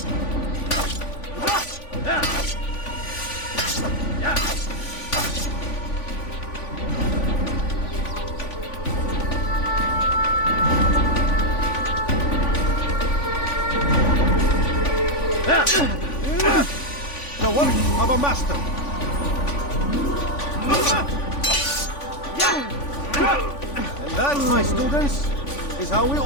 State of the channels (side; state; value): right; late; 3.5 ms